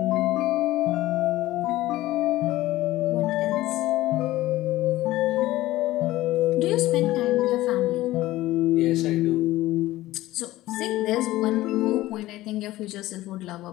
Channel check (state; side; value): quieter; right; 16.6 dB